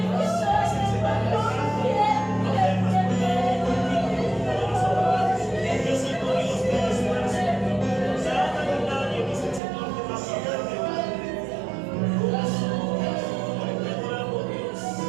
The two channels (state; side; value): drops out; left; at 9.6 s